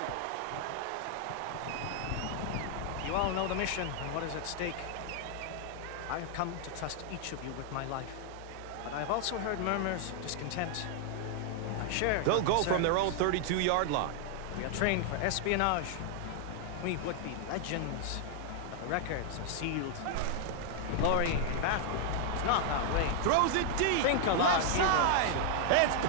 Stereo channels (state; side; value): different; both; correlation 0.00